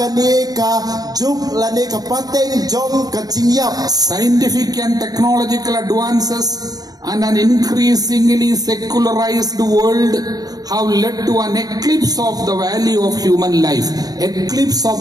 ka juk lani ka pateng jong ka jingyap. Scientific and technological advances and an increasingly secularized world have led to an eclipse of the value of human life. Eclipse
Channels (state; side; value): late; left; 0.19 ms